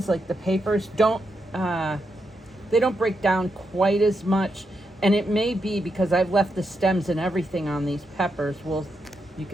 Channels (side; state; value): both; normal; correlation 0.83